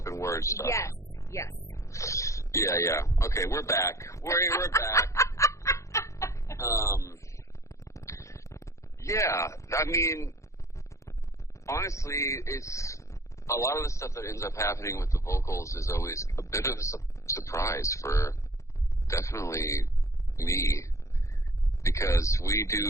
word stuff. Yes. Yeah. Okay, we're back. We're back. Yeah, I mean, honestly, it's a lot of the stuff that ends up happening with the vocals is always a bit of a surprise for definitely me, because we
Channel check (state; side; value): late; right; 0.15 ms